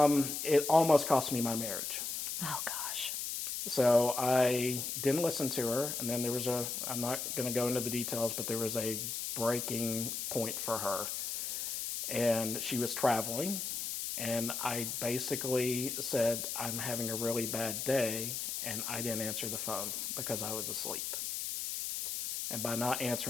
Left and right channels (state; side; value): noise; left; hiss, 3 dB below the sound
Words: it almost cost me my marriage. Oh gosh. So I didn't listen to her, and then I'm not going to go into the details, but there was a breaking point for her. And she was traveling, and I basically said, I'm having a really bad day, and I didn't answer the phone because I was asleep. And by not